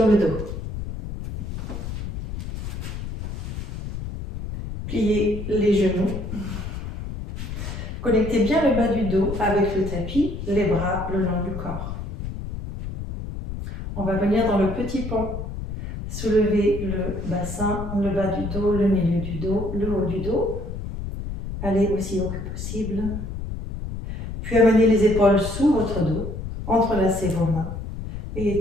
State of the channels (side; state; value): left; noise; rumble, 7 dB below the sound